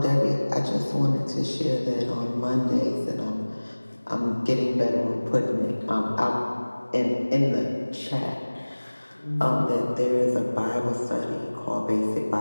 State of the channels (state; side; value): inverted; both; correlation -1.00